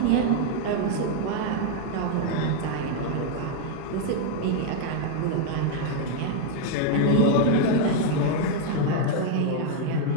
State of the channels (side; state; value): both; different; correlation 0.00